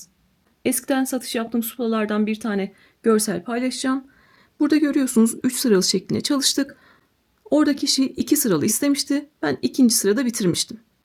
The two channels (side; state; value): both; identical; correlation 1.00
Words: Eskiden satış yaptığım suplalardan bir tane görsel paylaşacağım. Burada görüyorsunuz 3 sıralı şeklinde çalıştık. Orada kişi 2 sıralı istemişti. Ben ikinci sırada bitirmiştim.